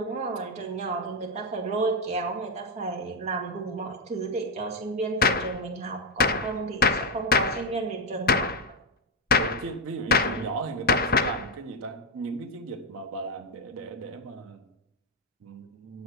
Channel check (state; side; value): normal; both; correlation 0.03